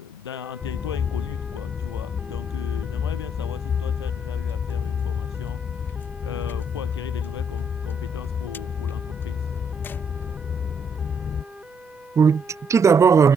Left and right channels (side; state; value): both; normal; correlation 0.71